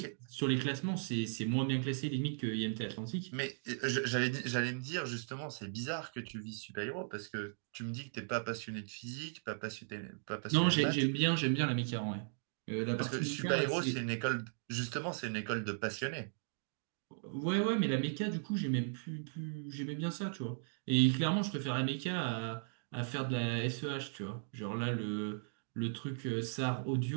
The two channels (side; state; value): left; silent; digital silence